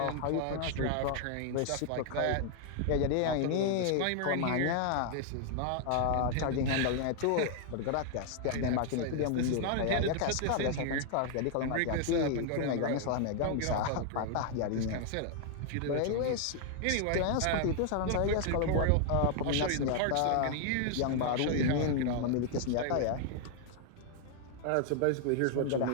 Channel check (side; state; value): both; different; correlation 0.00